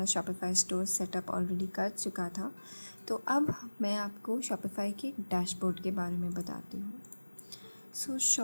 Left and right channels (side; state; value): both; inverted; correlation -1.00